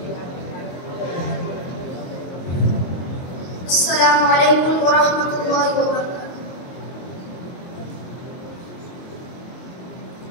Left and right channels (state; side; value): late; right; 22 ms